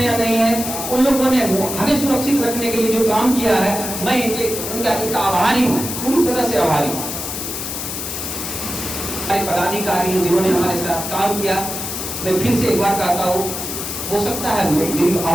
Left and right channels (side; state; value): left; noise; hiss, 5 dB below the sound